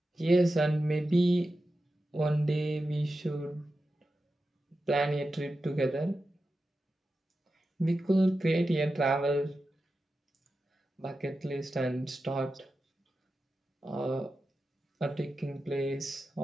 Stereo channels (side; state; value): both; normal; correlation 0.92